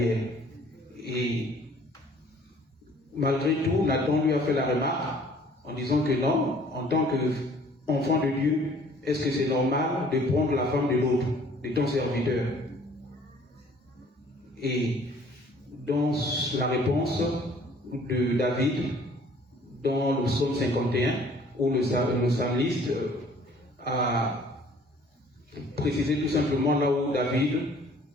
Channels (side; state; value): both; normal; correlation 0.55